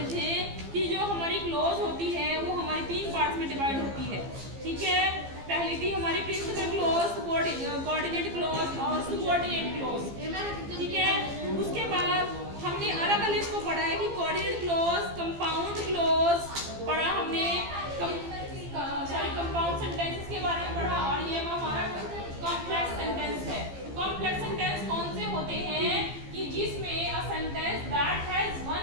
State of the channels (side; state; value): left; late; 15 ms